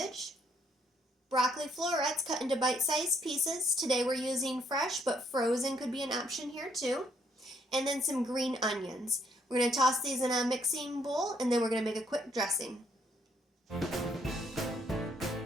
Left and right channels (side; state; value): both; normal; correlation 0.70